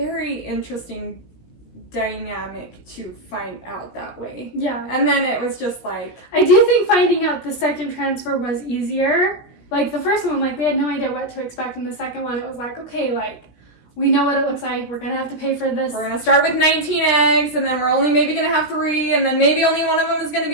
interesting dynamic to find out that way. Yeah. And then it was just like, I do think finding out the second transfer was easier. Like, the first one, like, we had no idea what to expect, and the second one, it was like, okay, like, we know what it looks like, we're gonna have to pay for this. We're gonna start with 19 eggs, and then we're only maybe gonna have 3, and then maybe only one of them is gonna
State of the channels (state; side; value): late; right; 17 ms